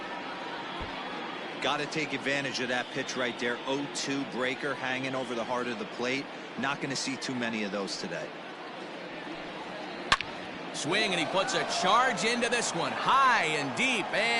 Got to take advantage of that pitch right there. 0-2 breaker hanging over the heart of the plate. Not going to see too many of those today. Swing, and he puts a charge into this one. High and deep,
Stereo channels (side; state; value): both; identical; correlation 1.00